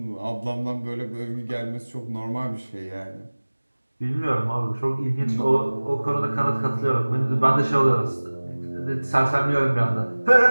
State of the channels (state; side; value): inverted; both; correlation -1.00